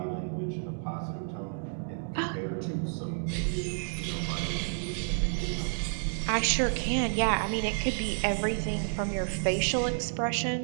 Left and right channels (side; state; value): left; silent; 57 dB below the other